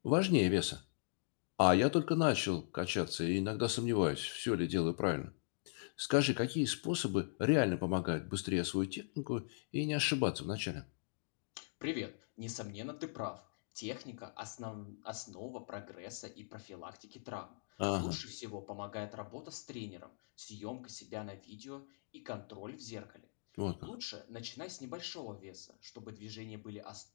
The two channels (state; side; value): silent; right; digital silence